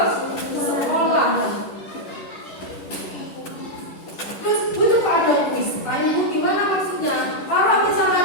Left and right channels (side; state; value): right; late; 10 ms